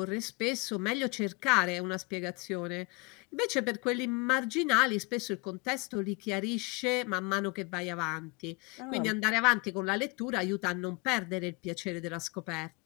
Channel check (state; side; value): quieter; right; 27.8 dB